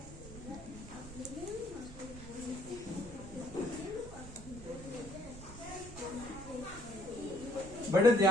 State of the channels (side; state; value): right; noise; rumble, 14 dB below the sound